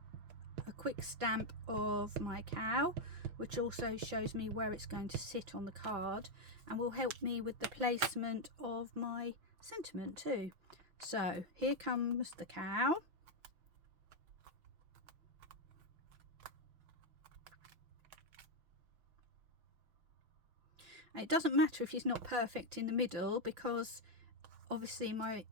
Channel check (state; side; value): late; left; 5.9 ms